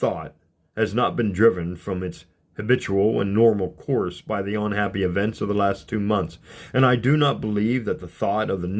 has not been driven from its habitual and normal course by the unhappy events of the last 2 months, and I do not believe that the thought of the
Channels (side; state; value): both; identical; correlation 1.00